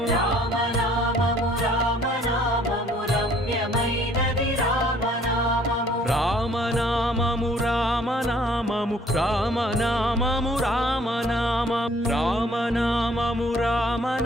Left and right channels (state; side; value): normal; both; correlation 0.59